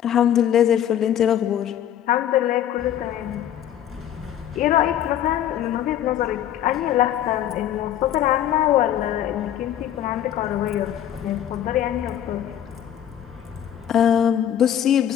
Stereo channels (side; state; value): right; quieter; 10.7 dB